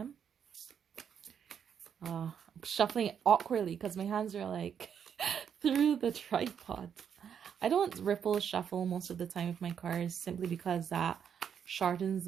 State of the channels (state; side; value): quieter; left; 7.9 dB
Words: I'm shuffling it awkwardly because my hands are like through the tripod. I don't ripple shuffle most of the time with my cards simply because that shortens